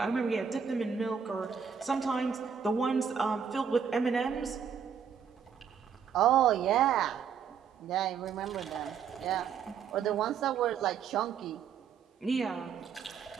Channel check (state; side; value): quieter; left; 7.1 dB